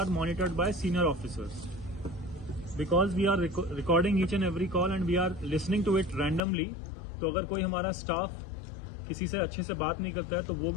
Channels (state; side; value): drops out; right; at 6.4 s